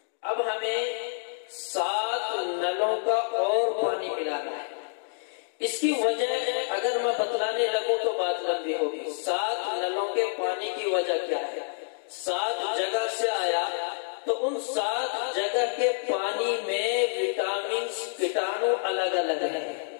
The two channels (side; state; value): right; silent; digital silence